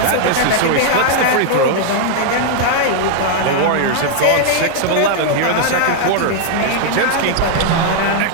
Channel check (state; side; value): different; both; correlation 0.00